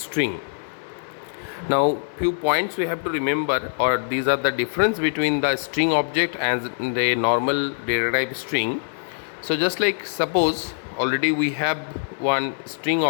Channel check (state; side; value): silent; right; digital silence